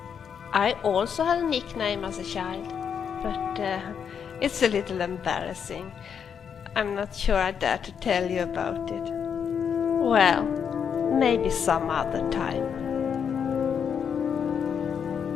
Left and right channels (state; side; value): quieter; right; 7.4 dB